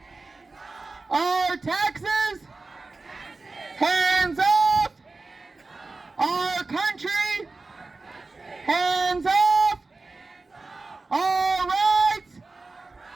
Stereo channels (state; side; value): quieter; left; 3.6 dB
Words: Our taxes! Hands off! Our country! Hands off! All right!